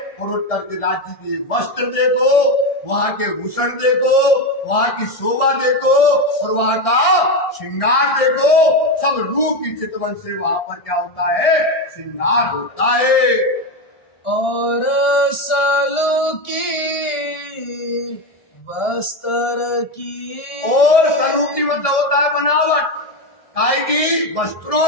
और उठ करके राज्य के वस्त्र देखो, वहां के भूषण देखो, वहां की शोभा देखो और वहां का श्रृंगार देखो। सब रूप की चितवन से वहां पर क्या होता है? श्रृंगार होता है। और सलो की वस्त्र की, और सरू की मतलब होता है बनावट, काय की?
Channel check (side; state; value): right; late; 1.6 ms